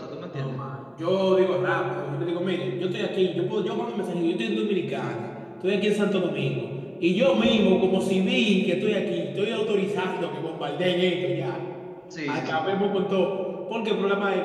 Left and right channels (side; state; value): both; identical; correlation 1.00